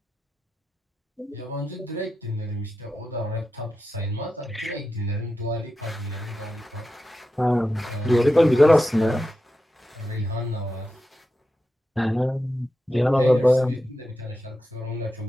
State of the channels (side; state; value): both; normal; correlation 0.90